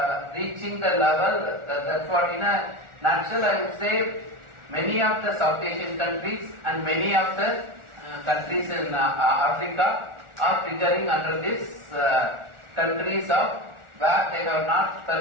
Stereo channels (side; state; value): left; late; 1.4 ms